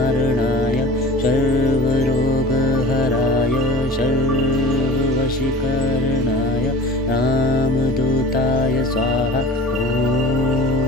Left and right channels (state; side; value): normal; both; correlation 0.39